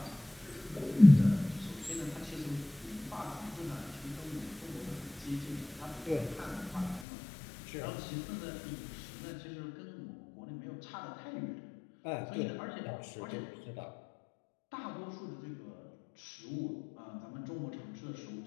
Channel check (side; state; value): right; drops out; at 7.1 s